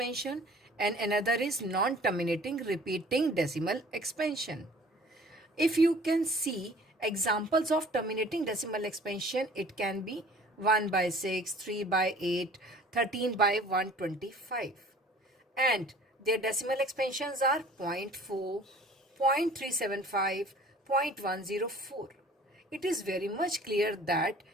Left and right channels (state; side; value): normal; both; correlation 0.50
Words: and another is non-terminating repeating decimal expansion. If you can see examples of terminating decimal expansion, it can be 1 by 6, 3 by 8, 13 by 125. And their decimal expansions are 0.4, 0.375, 0.104. It is very much clear that